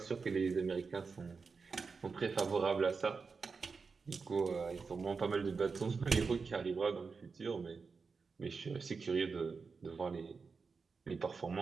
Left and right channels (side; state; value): left; quieter; 4.9 dB